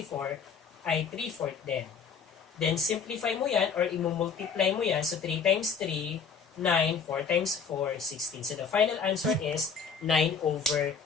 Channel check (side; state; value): right; quieter; 6.0 dB